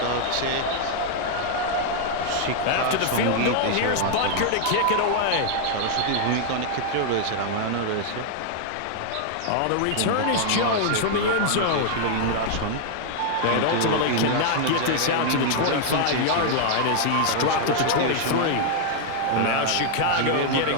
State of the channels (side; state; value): both; different; correlation -0.01